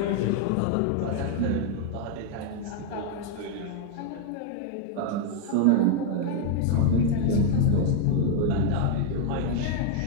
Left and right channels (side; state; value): both; different; correlation 0.00